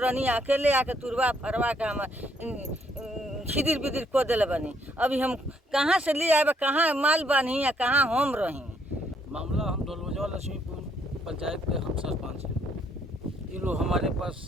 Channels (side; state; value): both; normal; correlation 0.70